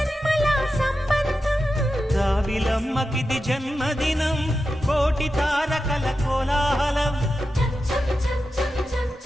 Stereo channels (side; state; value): both; normal; correlation 0.90